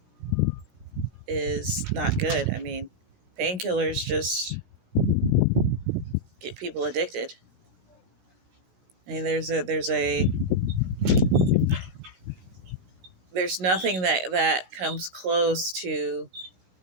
is not good. I mean, painkillers just get people addicted. I mean, there's nothing that comes close to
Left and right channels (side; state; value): left; late; 16 ms